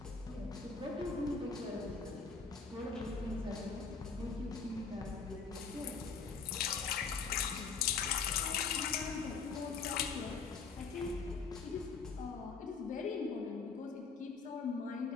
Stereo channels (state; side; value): quieter; right; 5.2 dB